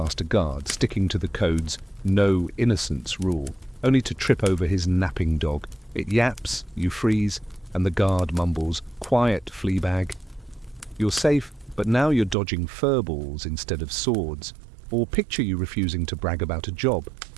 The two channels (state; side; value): drops out; left; at 12.4 s